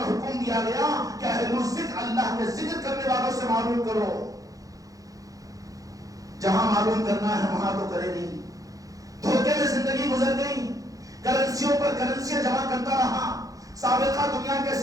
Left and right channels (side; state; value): left; late; 0.17 ms